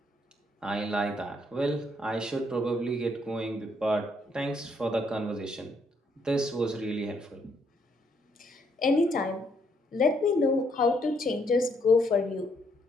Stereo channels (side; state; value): both; normal; correlation 0.71